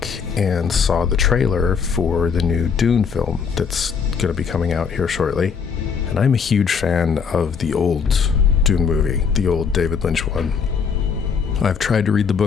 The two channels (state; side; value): quieter; right; 6.2 dB